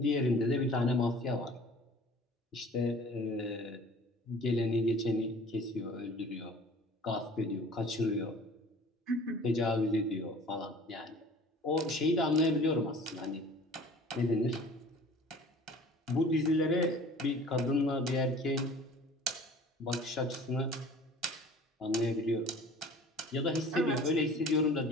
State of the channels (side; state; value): both; normal; correlation 0.46